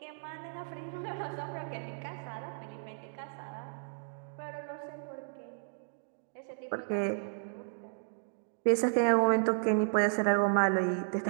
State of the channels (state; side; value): silent; left; digital silence